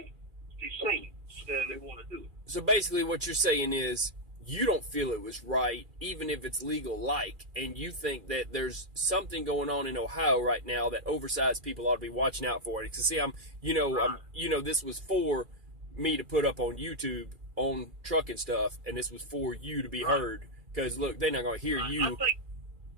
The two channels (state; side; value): late; left; 2.4 ms